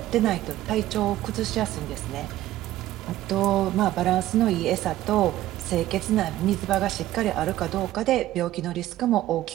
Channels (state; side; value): quieter; left; 14.6 dB